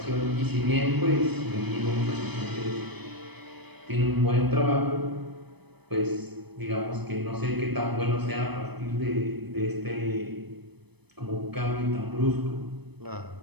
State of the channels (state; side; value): late; left; 0.99 ms